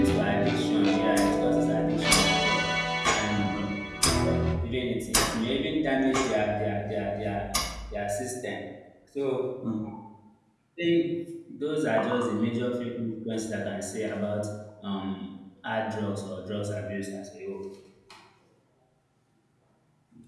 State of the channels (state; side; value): identical; both; correlation 1.00